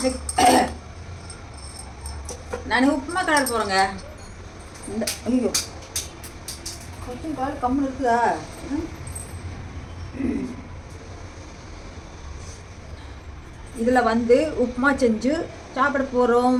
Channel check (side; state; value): both; identical; correlation 1.00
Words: நான் உப்புமா கலர் போகிறேங்க. இந்த ஐயோ கொஞ்சம் கால் கம்முன்னு இருக்குதா? இதில் வந்து உப்புமா செஞ்சு சாப்பிட